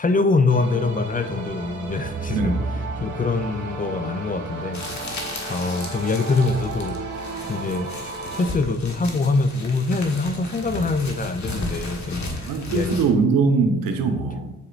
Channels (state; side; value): normal; both; correlation 0.57